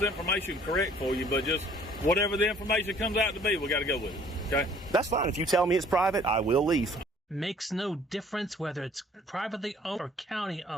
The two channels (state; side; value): normal; both; correlation 0.56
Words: information correct for you, but just whatever the information comes out to be, we got to go with it. Okay? that's fine. If you tell me it's private, I will leave. Makes no difference whether it's privately owned or county